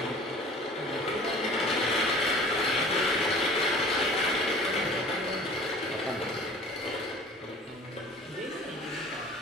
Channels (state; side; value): normal; both; correlation 0.46